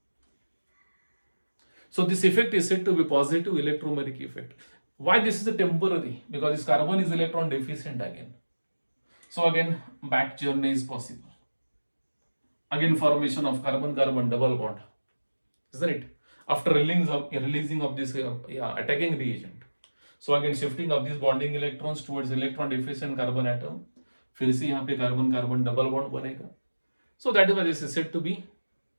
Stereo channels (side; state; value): both; inverted; correlation -1.00